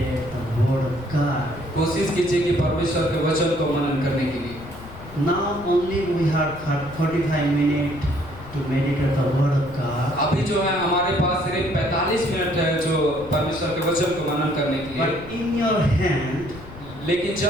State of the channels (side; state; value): left; noise; rumble, 16 dB below the sound